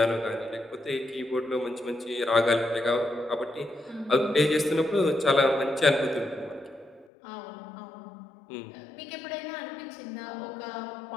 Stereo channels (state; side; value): drops out; right; at 7.1 s